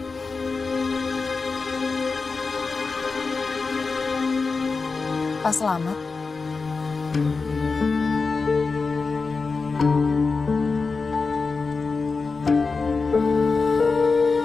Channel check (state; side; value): quieter; right; 4.4 dB